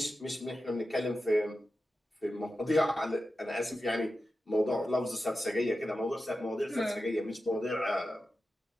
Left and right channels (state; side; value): normal; both; correlation 0.92